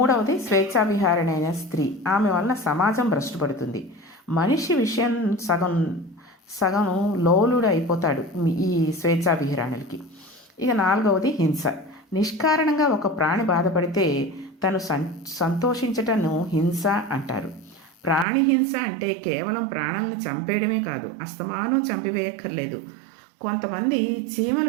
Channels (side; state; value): left; drops out; at 18.2 s